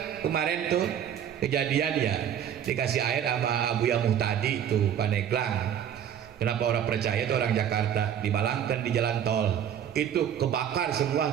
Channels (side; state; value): left; quieter; 9.4 dB